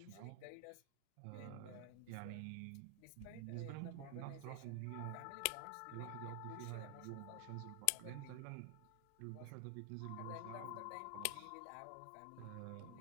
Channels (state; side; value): different; both; correlation 0.00